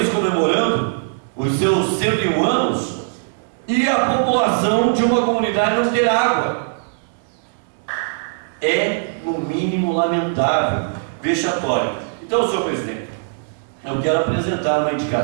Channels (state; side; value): silent; left; digital silence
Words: comemorando os seus 101 anos e a população de uma comunidade não ter água. É, no mínimo, lamentável, vexatório. Então, senhor presidente, eu quero apresentar uma